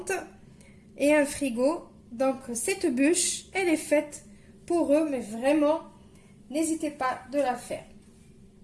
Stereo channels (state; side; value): identical; both; correlation 1.00